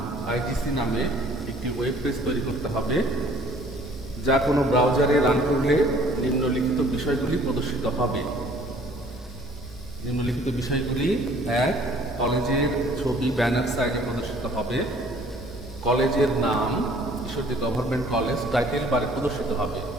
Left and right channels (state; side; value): normal; both; correlation 0.55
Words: আইটিসি নামে একটি ওয়েব পেজ তৈরি করতে হবে, যা কোনো ব্রাউজারে রান করলে নিম্নলিখিত বিষয়গুলি প্রদর্শিত হবে। নিম্নলিখিত বিষয়গুলি: 1. কলেজের ছবি ব্যানার সাইজে প্রদর্শিত হবে। কলেজের নাম ঈশ্বরদী গভর্নমেন্ট কলেজ টাইটেল বারে প্রদর্শিত হবে।